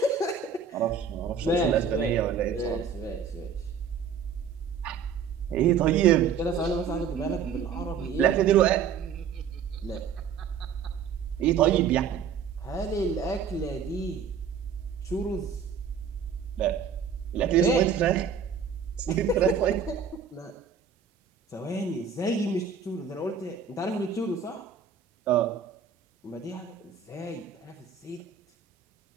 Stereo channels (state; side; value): quieter; left; 6.7 dB